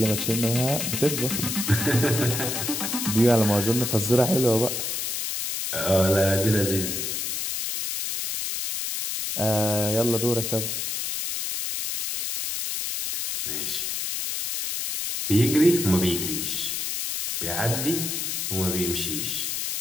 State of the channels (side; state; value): left; noise; hiss, 2 dB below the sound